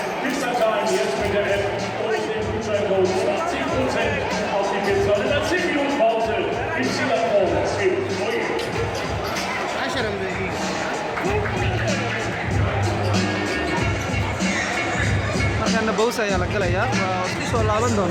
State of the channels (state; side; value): identical; both; correlation 1.00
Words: Spielstand jetzt mit der App und dem Gutscheincode 20% auf die Pizza. In der 10 Minuten Pause ist die Laptop für euch. markaana bows ayaa la galayaa waa isku soo laaban